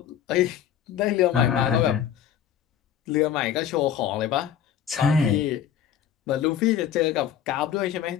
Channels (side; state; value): right; quieter; 9.4 dB